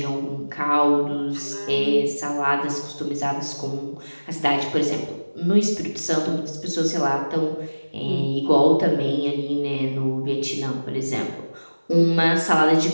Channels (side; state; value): both; inverted; correlation -1.00